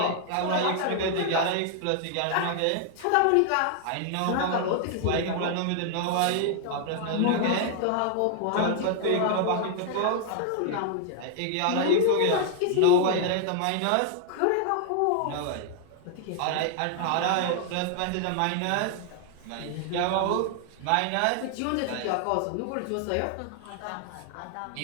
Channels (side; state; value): both; different; correlation 0.00